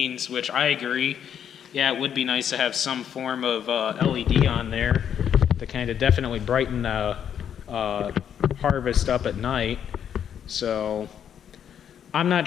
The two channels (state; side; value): quieter; right; 8.8 dB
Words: which I agree. Yeah, it would be nice to have some form of LED on there to kind of definitely brighten the harvest up at night. So I'm